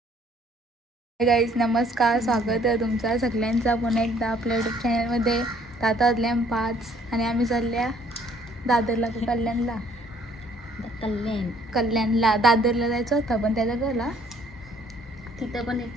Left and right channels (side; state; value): both; normal; correlation 0.61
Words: नमस्कार, स्वागत आहे तुमचा सगळ्यांचा पुन्हा एकदा आपल्या यूट्यूब चॅनलमध्ये. आता वाजल्या 5 आणि आम्ही चालल्या दादरला. कल्याणला दादरला जायचं होतं पण त्याला गेला तिथं पण